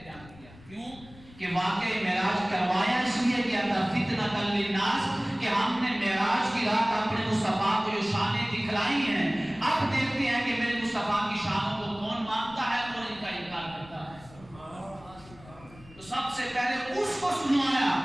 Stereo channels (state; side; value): noise; left; rumble, 22 dB below the sound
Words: بیان کیا. کیوں کہ واقعہ معراج کروایا اس لیے کیا تھا فتنۃ للناس، کہ ہم نے معراج کی رات اپنے مصطفیٰ کو جو شانیں دکھلائی ہیں، اب دیکھتے ہیں کہ میرے مصطفیٰ کی شانوں کو کون مانتا ہے، کون ان کا انکار کرتا ہے. تو سب سے پہلے اس کو سنایا